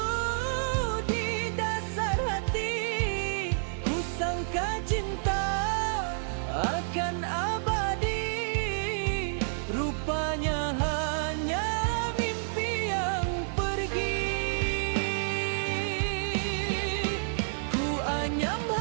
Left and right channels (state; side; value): silent; left; digital silence